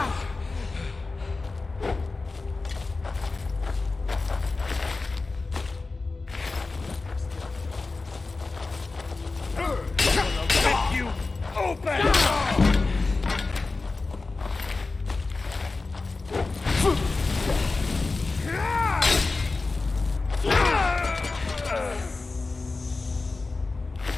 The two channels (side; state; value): right; quieter; 3.7 dB